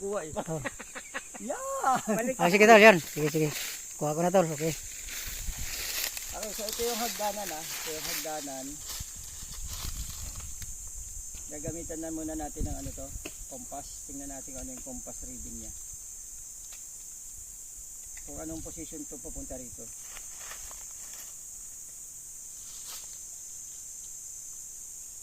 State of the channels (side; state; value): both; identical; correlation 1.00